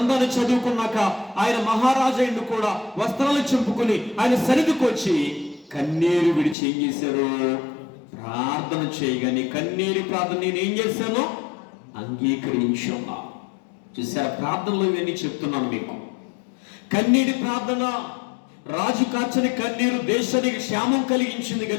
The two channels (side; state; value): right; drops out; at 6.6 s